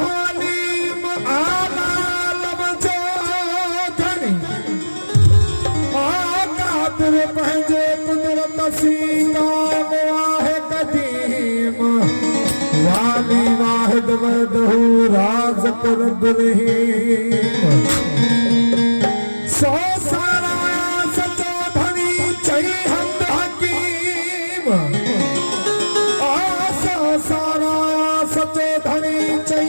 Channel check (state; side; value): inverted; both; correlation -1.00